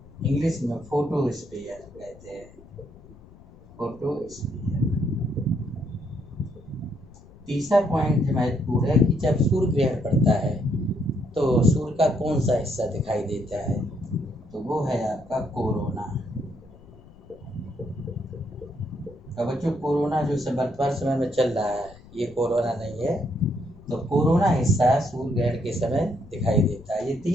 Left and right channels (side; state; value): left; noise; rumble, 22 dB below the sound